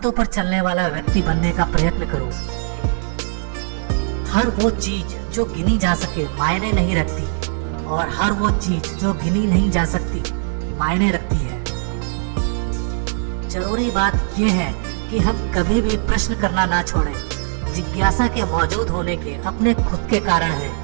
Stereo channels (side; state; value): left; silent; digital silence